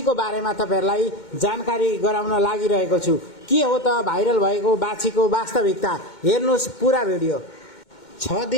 बारेमा तपाईहरुलाई जानकारी गराउन लागिरहेको छु। के हो त भाइरल भएको बाछीको वास्तविकता, हेर्नुस् पुरा भिडियो। 6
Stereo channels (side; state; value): right; late; 2.1 ms